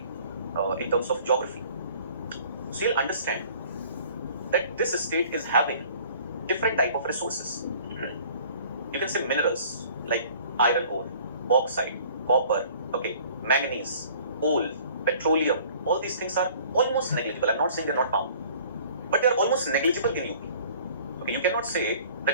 in terms of geography, so you'll understand that this state is having different type of resources. You can say minerals like iron ore, bauxite, copper, okay, manganese, coal, petroleum. All these things are almost negligible. I'm not saying they're not found, but they're almost negligible in UP. Okay, you cannot say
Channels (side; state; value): both; inverted; correlation -0.51